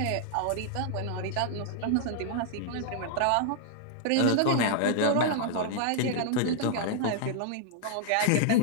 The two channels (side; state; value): both; different; correlation -0.01